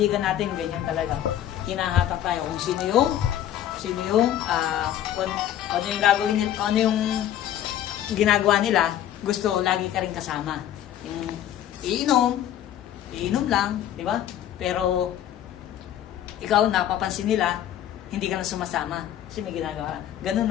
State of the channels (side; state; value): right; quieter; 11.3 dB